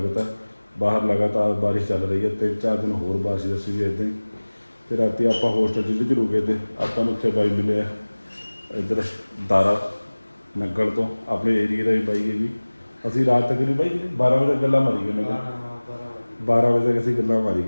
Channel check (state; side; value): inverted; both; correlation -1.00